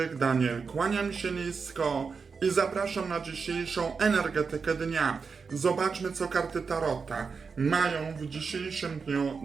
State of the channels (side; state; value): left; quieter; 5.3 dB